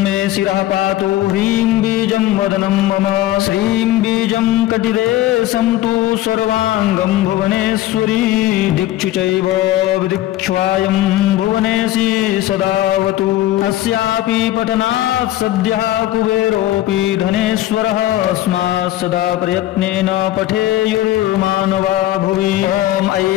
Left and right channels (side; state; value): right; quieter; 14.8 dB